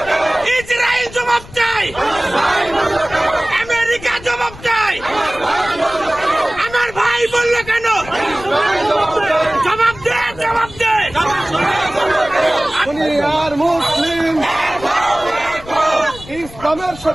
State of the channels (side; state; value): left; noise; rumble, 17 dB below the sound